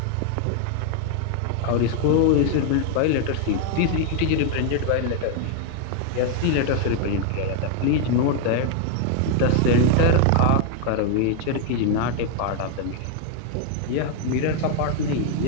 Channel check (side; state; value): both; different; correlation 0.00